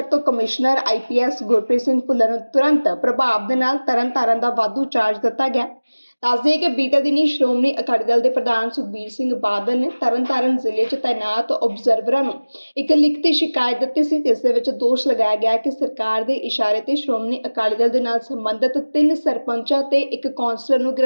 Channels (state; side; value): inverted; both; correlation -1.00